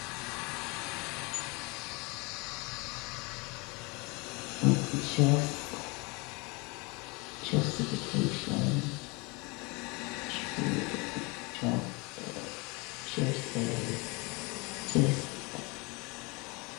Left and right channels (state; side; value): quieter; right; 27.9 dB